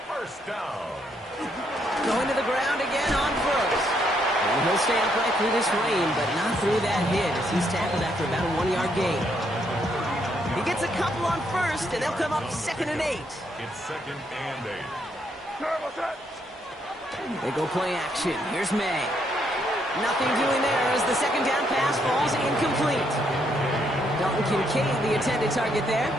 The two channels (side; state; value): both; normal; correlation 0.74